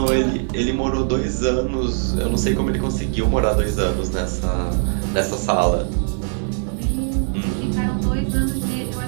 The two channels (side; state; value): left; silent; 64 dB below the other